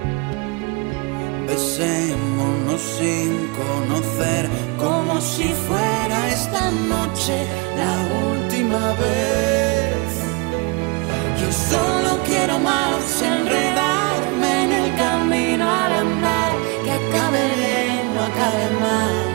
Besémonos sin conocer, como si fuera esta noche la última vez. Yo solo quiero más enredarme en el camino al andar, que acabe bien, no acabe mal.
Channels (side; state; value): left; quieter; 29.3 dB